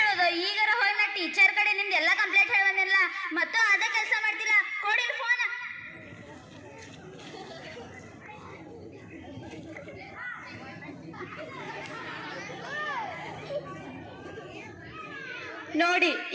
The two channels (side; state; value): both; identical; correlation 1.00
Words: ಹೇಳೋದು? ಈಗಾರ ಹೋಗಿ ನಾ ಟೀಚರ್ ಕಡೆ ನಿಮ್ದು ಎಲ್ಲ ಕಂಪ್ಲೇಂಟ್ ಹೇಳಿ ಬಂದಿಲ್ಲ. ಮತ್ತು ಅದೇ ಕೆಲಸ ಮಾಡ್ತಿಲ್ಲ. ಕೊಡಿ ಫೋನ್. ನೋಡಿ